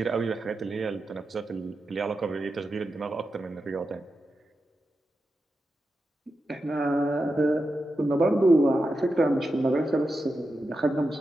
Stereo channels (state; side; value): normal; both; correlation 0.89